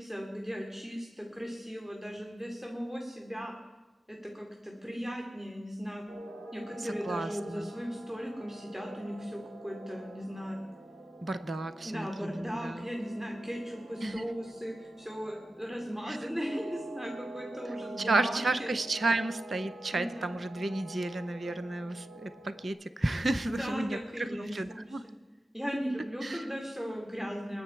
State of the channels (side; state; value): both; normal; correlation 0.93